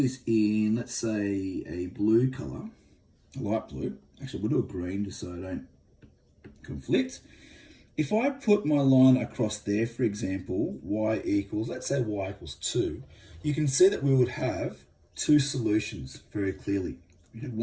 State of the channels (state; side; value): identical; both; correlation 1.00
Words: this in, let's say, a blue color, a light blue. Actually, we'll do a green just so I don't conflict. If I put my line across there, for example, y equals, let's say y equals 2, you can see that we would have two solutions very clearly. We have